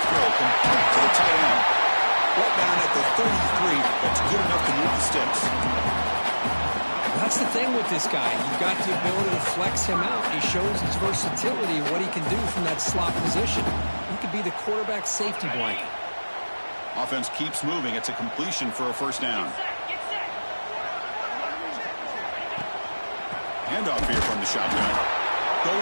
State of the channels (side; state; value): both; inverted; correlation -1.00